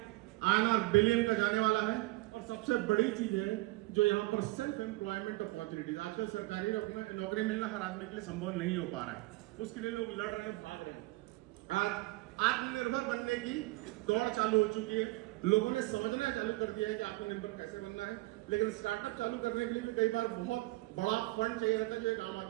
INR बिलियन का जाने वाला है। और सबसे बड़ी चीज है जो यहाँ पर सेल्फ एम्प्लॉयमेंट अपॉर्चुनिटीज, आजकल सरकारी नौकरी मिलना हर आदमी के लिए संभव नहीं हो पा रहा है, उसके लिए लोग लड़ रहे हैं, भाग रहे हैं। आज आत्मनिर्भर बनने की दौड़ चालू हो चुकी है। लोगों ने समझना चालू कर दिया है कि आत्मनिर्भर कैसे बनना है, लेकिन स्टार्टअप चालू करने के लिए भी कई बार बहुत बड़ा फंड चाहिए रहता है जो एक आम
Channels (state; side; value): quieter; left; 21.7 dB